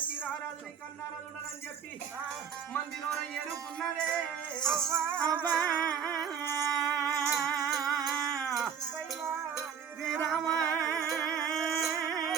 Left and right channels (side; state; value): left; quieter; 7.5 dB